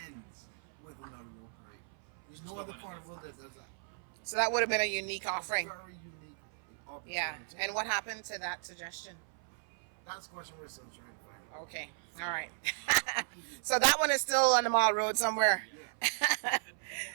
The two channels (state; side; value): silent; left; 54 dB below the other